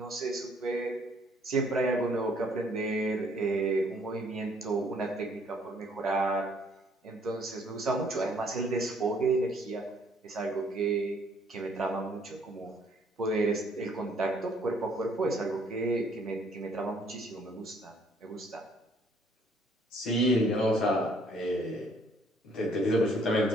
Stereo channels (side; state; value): both; normal; correlation 0.63